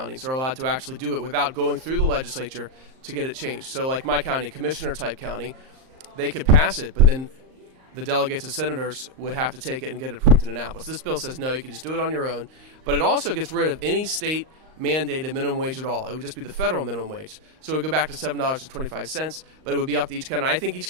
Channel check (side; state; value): left; late; 38 ms